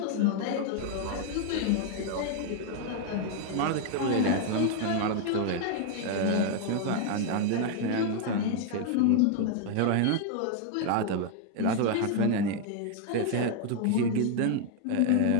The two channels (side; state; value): both; different; correlation 0.00